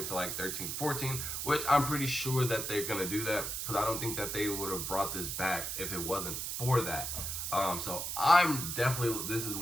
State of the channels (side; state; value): right; noise; hiss, 3 dB below the sound